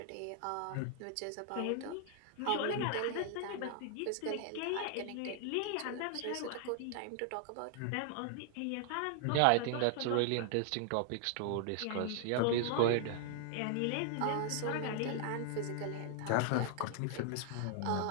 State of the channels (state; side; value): different; both; correlation 0.00